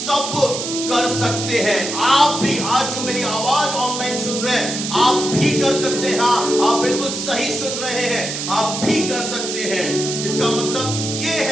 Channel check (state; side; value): noise; right; hiss, 5 dB below the sound